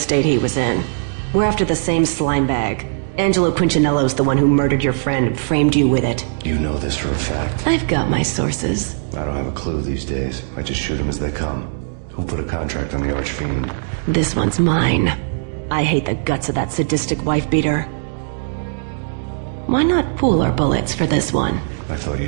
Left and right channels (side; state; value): left; silent; digital silence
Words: he was in. We're after the same slime bag. Angelo Punchinello's the one who murdered your friend and framed you with it. You know this for a fact? I've got my sources. I don't have a clue these days. I just shoot them as they come. Who put a contract on the Archfiend? This one's mine. I hate the guts of that sadistic wife-beater. Why not pool our bullets for this one? I thought